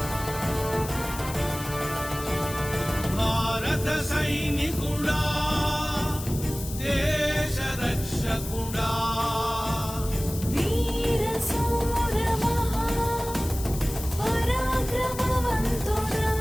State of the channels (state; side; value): noise; left; hiss, 11 dB below the sound